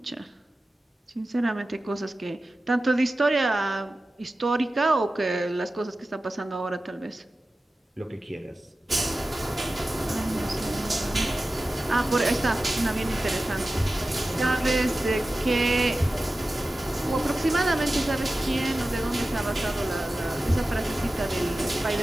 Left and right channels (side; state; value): both; normal; correlation 0.95